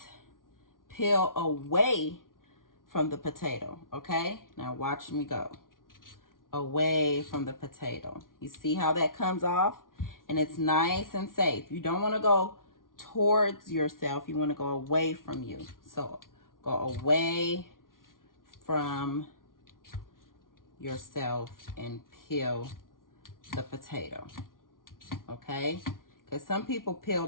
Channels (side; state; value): right; late; 0.90 ms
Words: peel away from the potato, okay? Now watch me go. Away from the potato. You see how that comes off? And it's nice and safe. You don't want to go towards yourself. You want to go away from you. So go away from yourself and peel the potato, okay? Because some people peel